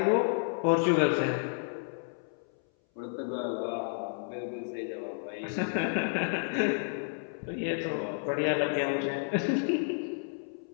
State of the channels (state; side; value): silent; right; 57 dB below the other